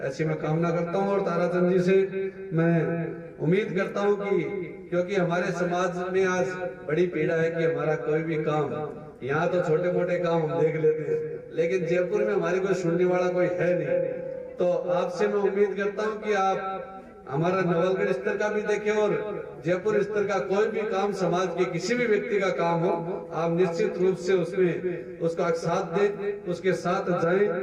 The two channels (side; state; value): both; identical; correlation 1.00